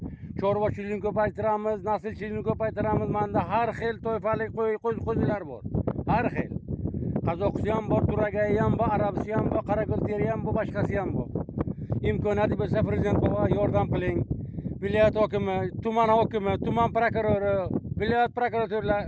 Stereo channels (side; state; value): both; identical; correlation 1.00